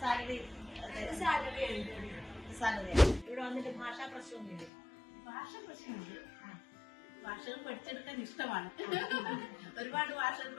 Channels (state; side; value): drops out; right; at 4.7 s